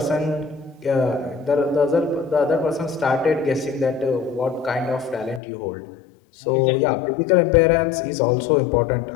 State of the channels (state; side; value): drops out; right; at 5.4 s